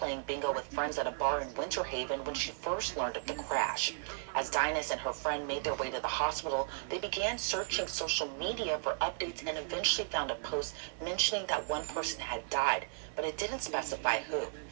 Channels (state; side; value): silent; left; digital silence